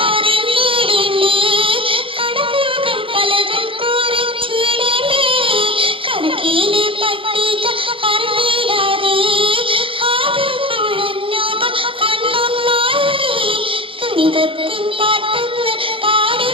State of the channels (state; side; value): late; left; 0.26 ms